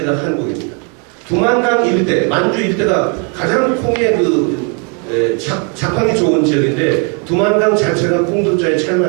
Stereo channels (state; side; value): quieter; left; 36.9 dB